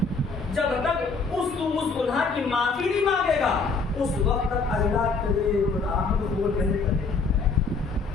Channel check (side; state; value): right; quieter; 4.3 dB